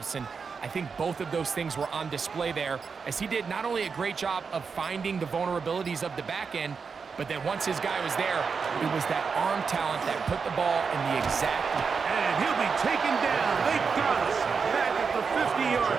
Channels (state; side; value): quieter; left; 5.5 dB